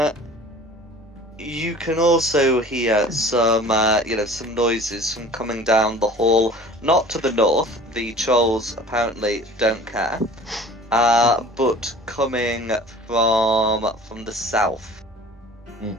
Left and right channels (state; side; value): normal; both; correlation 0.44